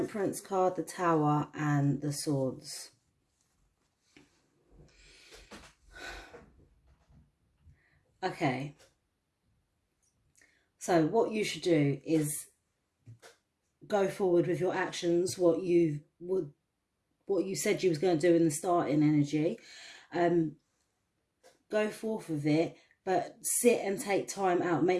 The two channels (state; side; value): identical; both; correlation 1.00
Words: card, the Tower, and the Swords. Okay. So what you should do is go forward with your actions, what you said you was going to do in the starting energy. Go forth with it, but sit and take time out.